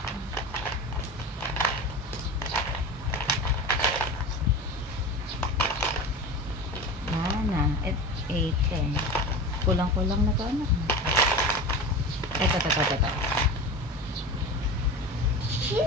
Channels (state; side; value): normal; both; correlation 0.30